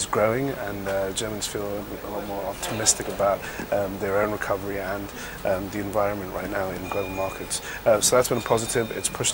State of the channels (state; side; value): identical; both; correlation 1.00